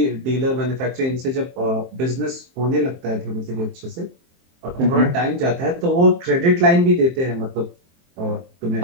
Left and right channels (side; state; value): left; late; 23 ms